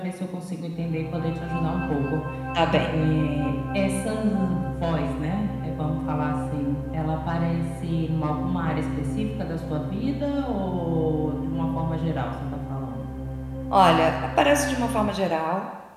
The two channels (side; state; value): both; identical; correlation 1.00